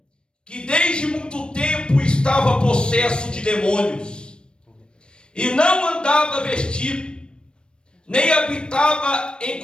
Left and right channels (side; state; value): right; late; 0.054 ms